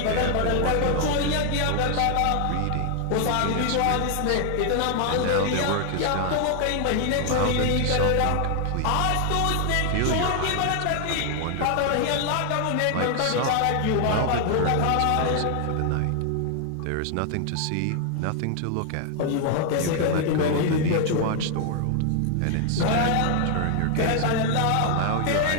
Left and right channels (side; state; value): both; different; correlation 0.00